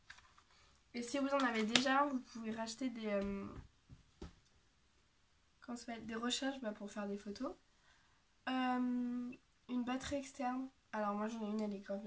Et si vous en avez déjà, vous pouvez racheter des... comment ça s'appelle, des recharges pour faire des photos. Une batterie externe. Alors moi j'en ai une, elle est grave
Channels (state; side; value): identical; both; correlation 1.00